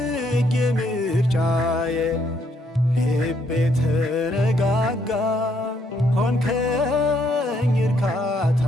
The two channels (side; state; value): both; normal; correlation 0.71